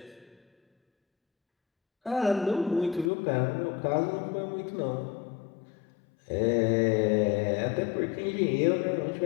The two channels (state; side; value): drops out; right; at 3.1 s